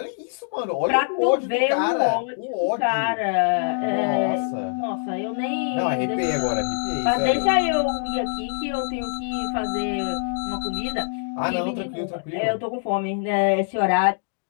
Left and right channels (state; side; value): silent; right; digital silence